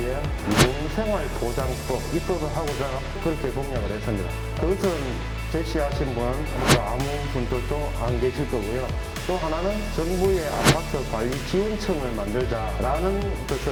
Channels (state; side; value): identical; both; correlation 1.00